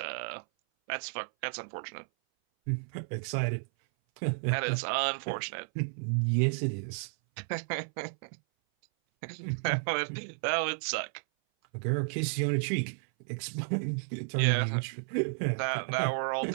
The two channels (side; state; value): left; silent; 56 dB below the other